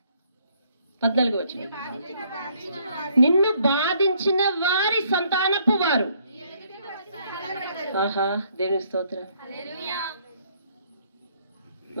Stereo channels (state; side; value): inverted; both; correlation -0.66